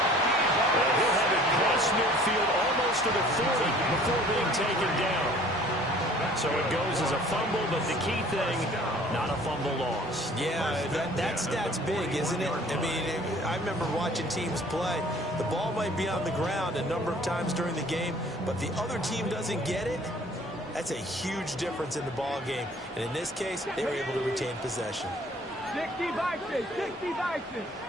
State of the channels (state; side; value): normal; both; correlation 0.52